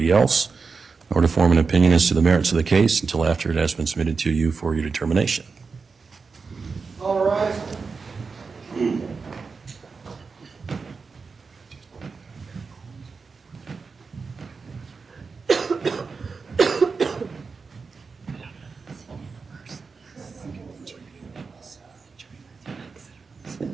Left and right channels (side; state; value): left; quieter; 4.8 dB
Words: else, nor to form an opinion as to the merits of the case until after it has been submitted to you for your determination. All right.